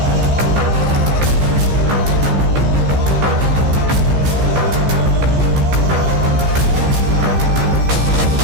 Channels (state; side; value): late; left; 15 ms